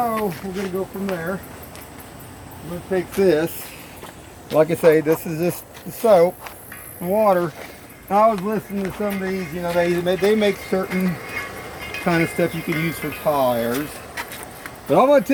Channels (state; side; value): identical; both; correlation 1.00